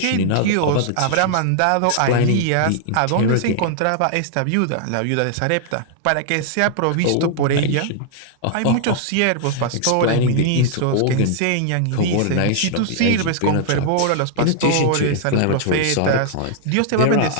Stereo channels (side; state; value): both; different; correlation 0.00